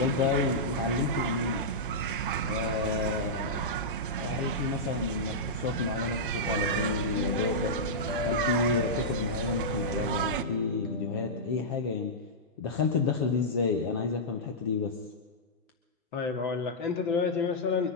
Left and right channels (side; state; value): both; normal; correlation -0.11